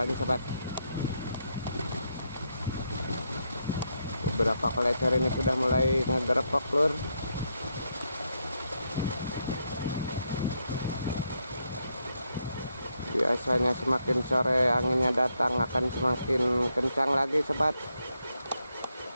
sahabat. Beberapa kolecer ini sudah mulai ngegerepok, lur. Biasanya semakin sore anginnya datang akan semakin kencang lagi, sahabat.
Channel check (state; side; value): inverted; both; correlation -0.79